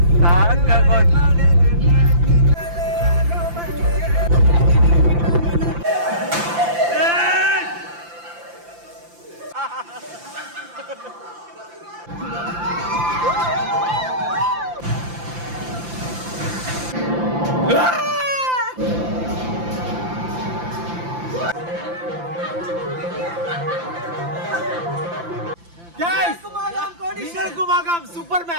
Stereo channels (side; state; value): left; late; 5.8 ms